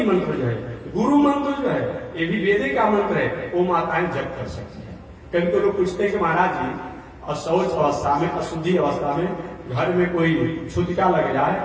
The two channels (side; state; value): both; identical; correlation 1.00